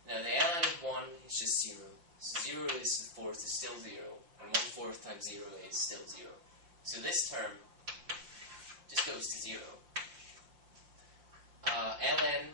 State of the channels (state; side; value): late; left; 5.7 ms